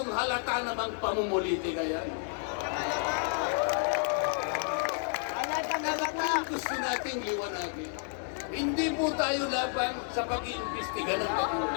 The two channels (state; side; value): silent; right; 57 dB below the other